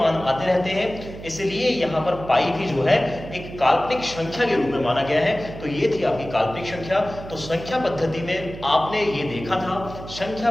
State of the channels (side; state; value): right; noise; hum, 13 dB below the sound